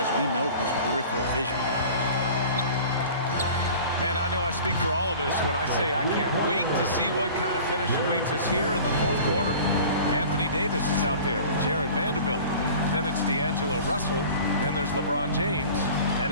we know, is peripheral vision. Man, I know I speak for all of us when I say I can't wait to see what kind of finish awaits us here in the fourth quarter. Anthony Davis is out there with Jared Vanderbilt. Then it's D'Angelo Russell. Then there's LeBron James. And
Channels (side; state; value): both; inverted; correlation -0.42